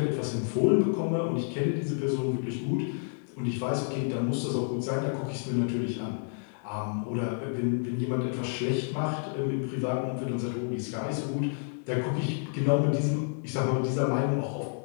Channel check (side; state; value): right; silent; digital silence